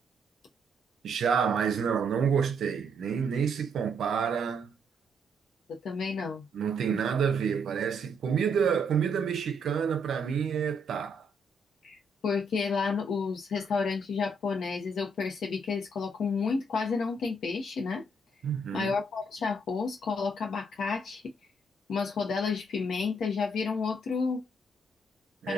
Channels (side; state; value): both; normal; correlation 0.72